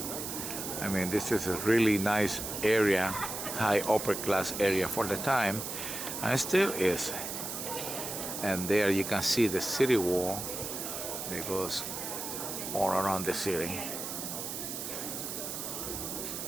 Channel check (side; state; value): right; noise; hiss, 5 dB below the sound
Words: I mean, this is a really nice area, high upper class area for the time, and it still is. And there you can see the city wall that goes all around the city.